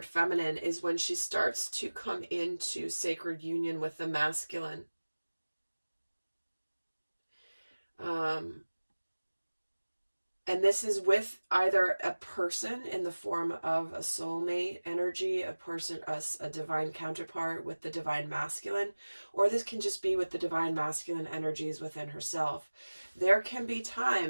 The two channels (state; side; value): inverted; both; correlation -1.00